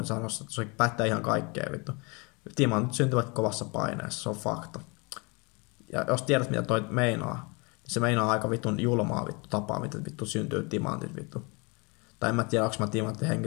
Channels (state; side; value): quieter; right; 29.8 dB